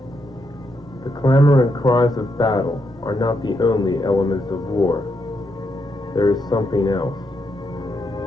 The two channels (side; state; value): both; normal; correlation 0.80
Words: The clamor and cries of battle are not the only elements of war. There is something else.